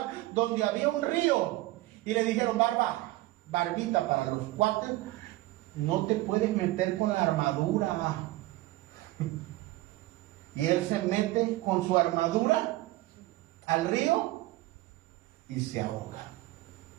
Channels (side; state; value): left; quieter; 18.2 dB